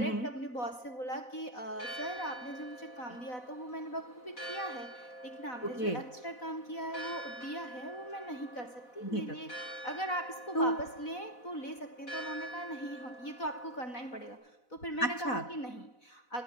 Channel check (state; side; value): late; right; 4.0 ms